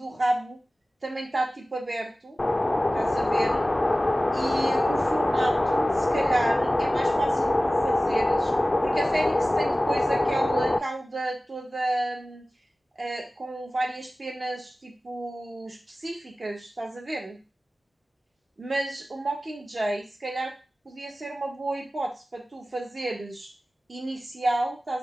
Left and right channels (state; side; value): normal; both; correlation 0.97